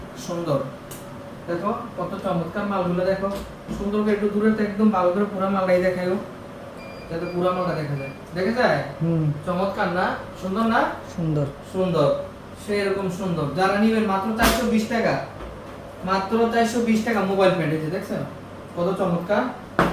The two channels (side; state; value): both; identical; correlation 1.00